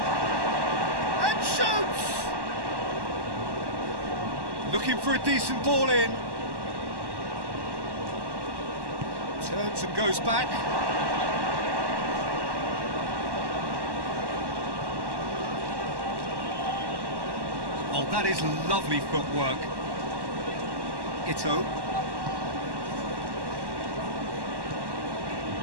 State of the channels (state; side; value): late; left; 1.1 ms